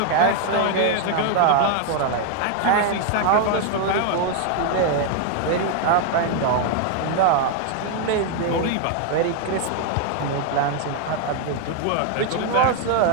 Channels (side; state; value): both; different; correlation 0.00